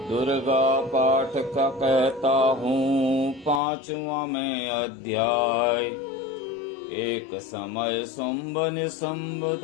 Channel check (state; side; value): drops out; right; at 3.6 s